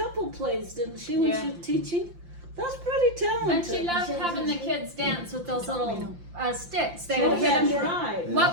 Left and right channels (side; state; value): left; late; 5.8 ms